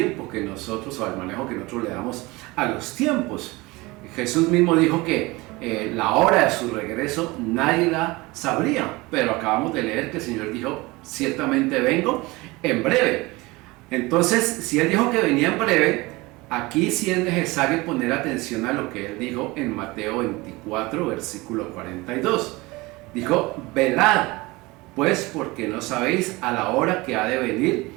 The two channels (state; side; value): quieter; left; 22.5 dB